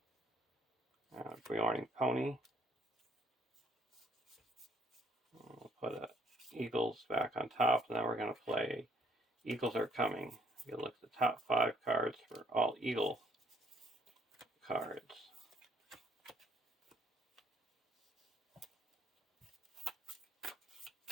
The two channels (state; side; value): normal; both; correlation 0.64